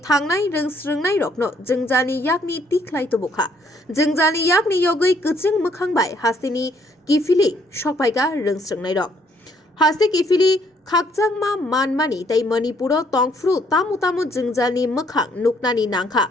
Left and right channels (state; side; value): normal; both; correlation 0.67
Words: थांनाय रोंसोरंनाय रकनो जिंजानि याकनि तिख्लाय तुबुखा जिंजानि याकनि योगै कचिं मोखांबाय हास्तेनि किफिलि सकपायगा रोंसोरंनाय रक हास्ते किफिलि खाकजांमा मानमानि ताई मणिपुरो तंफ्रु तामु तामु जिंजालनि मोखां नुकनानि नांखा